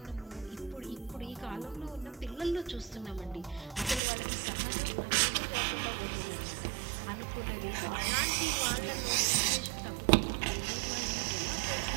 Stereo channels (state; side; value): drops out; left; at 4.0 s